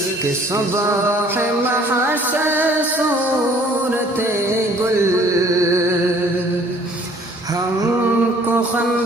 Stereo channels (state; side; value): normal; both; correlation 0.56